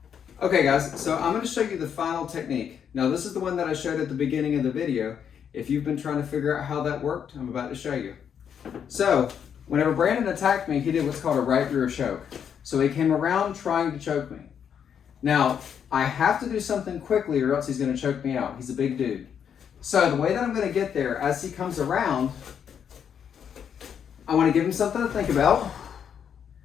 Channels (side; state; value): right; quieter; 8.0 dB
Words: Okay guys, so I'm going to show you the final technique. Now this is the one that I showed at the beginning of the video. If you've been trying to figure out how that worked, I'm about to show you. So, whenever Brandon attacked me, he did what's called a right rear choke. So he came around trying to choke me. Now, I have to do something quickly or else he's going to choke me out. He's a big dude. So the way that I'm going to get there, as he comes around, I want to give him something to think about.